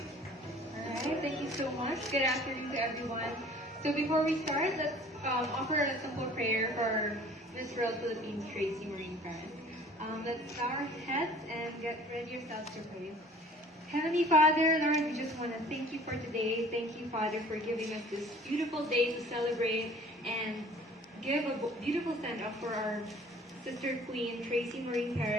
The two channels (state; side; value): normal; both; correlation 0.50